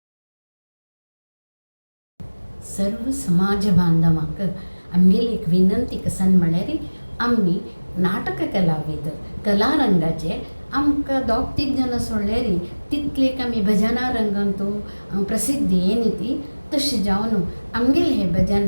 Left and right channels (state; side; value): inverted; both; correlation -1.00